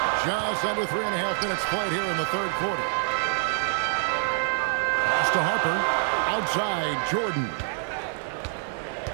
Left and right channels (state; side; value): silent; left; digital silence